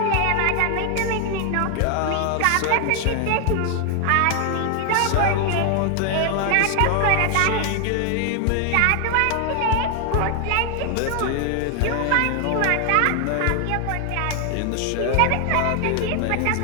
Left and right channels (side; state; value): both; different; correlation 0.00